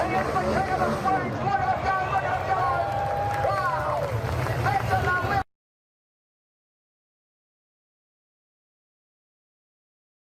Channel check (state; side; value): identical; both; correlation 1.00